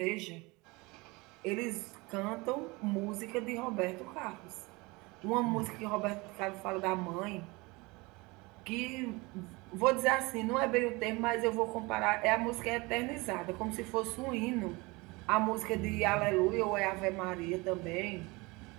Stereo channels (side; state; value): left; quieter; 24.7 dB